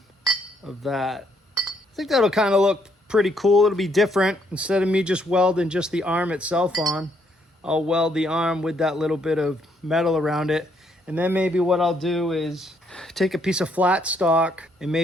of that. I think that'll kind of look pretty cool. It'll be different. Instead of me just welding just the arm itself on, I'll weld the arm with that little bit of metal around it. And then maybe what I'll do is take a piece of flat stock and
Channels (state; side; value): normal; both; correlation 0.71